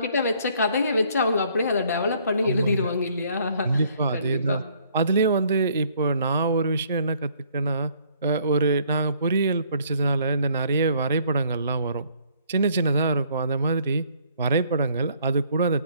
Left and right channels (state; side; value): inverted; both; correlation -0.63